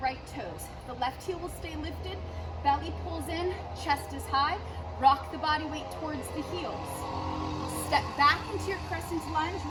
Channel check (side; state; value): both; identical; correlation 1.00